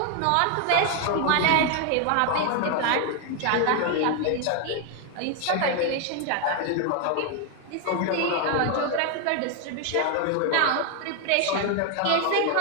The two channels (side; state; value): both; different; correlation 0.00